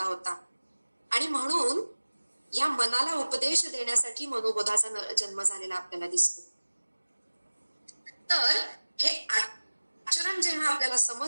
होता. आणि म्हणून या मनाला उपदेश देण्यासाठी मनोबोधाचा जन्म झालेला आपल्याला दिसतो. तर हे आचरण जेव्हा आपल्याला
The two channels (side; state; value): both; inverted; correlation -1.00